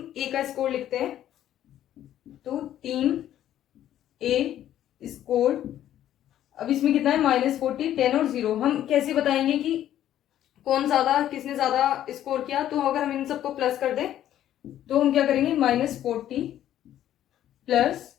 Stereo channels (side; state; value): right; quieter; 11.8 dB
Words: ए का स्कोर लिखते हैं, तो टीम ए स्कोर, अब इसमें कितना है -40, 10 और 0। हम कैसे बताएंगे कि कौन ज्यादा, किसने ज्यादा स्कोर किया, तो अगर हम इन सबको प्लस कर दें तो हम क्या करेंगे -40 प्लस